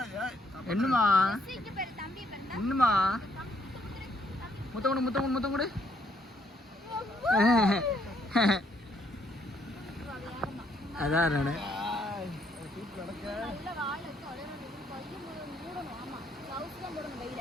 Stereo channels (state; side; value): normal; both; correlation 0.70